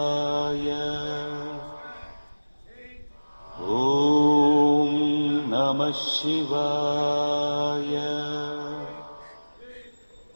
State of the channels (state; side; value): inverted; both; correlation -1.00